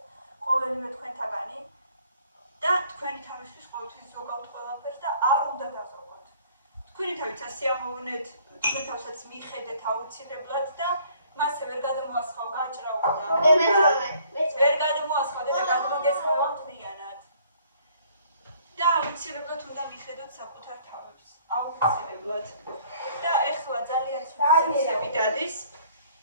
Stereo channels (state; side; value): inverted; both; correlation -0.59